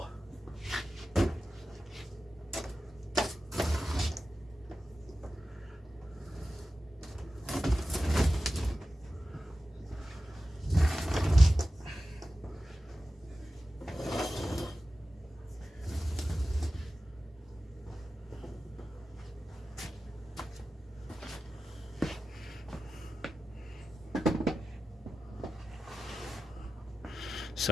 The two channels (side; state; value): both; normal; correlation 0.94